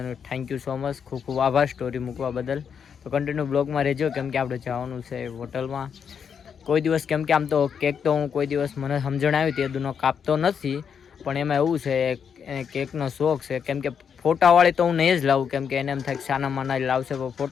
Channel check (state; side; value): quieter; right; 7.2 dB